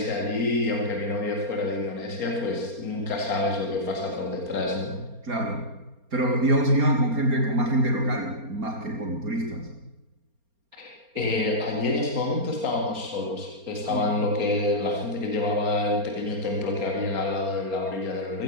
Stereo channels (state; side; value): late; left; 4.3 ms